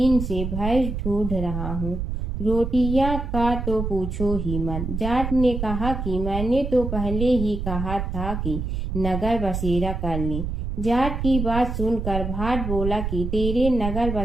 से भैंस ढूंढ रहा हूँ। रोटियां का तो पूछो ही मत। जाट ने कहा कि मैंने तो पहले ही कहा था कि नगर बसेरा कर ले। जाट की बात सुनकर भाट बोला कि तेरे नगर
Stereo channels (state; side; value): noise; right; rumble, 3 dB below the sound